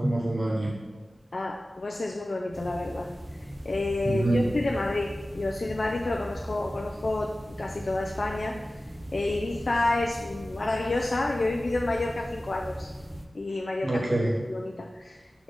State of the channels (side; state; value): both; normal; correlation 0.96